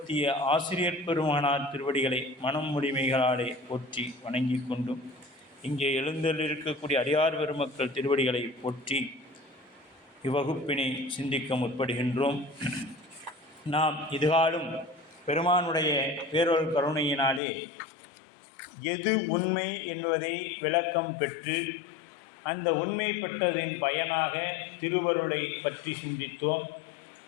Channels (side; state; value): right; drops out; at 17.4 s